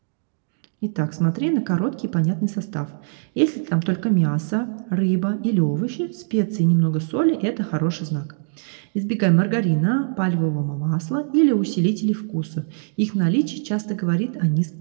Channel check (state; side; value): silent; left; digital silence